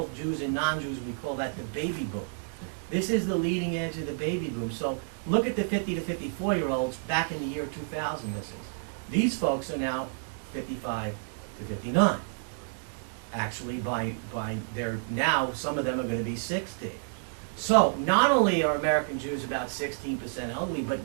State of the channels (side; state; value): left; silent; digital silence